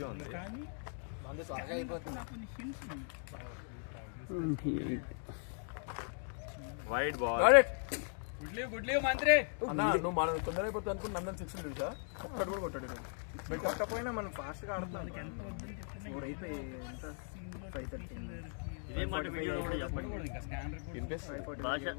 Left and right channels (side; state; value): right; silent; 52 dB below the other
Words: ఉంది. Wide ball. గుడ్లీ మంత్రి. అన్నా నువ్వు మనం తొందర అయిపోతుంది అనుకుని నందన్ 6 తెలుసా? ఒక్కడు కూడా కొట్టాడు. మీరు కొట్టకపోయినా మనం ఫాస్ట్గా ఆడుతున్నాం. 4 అయిపోయి ఎంత 5:30. ఇదే మాట వీడియో కూడా చెప్పండి.